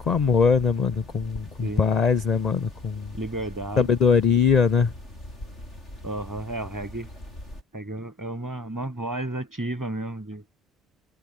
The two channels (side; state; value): right; quieter; 4.7 dB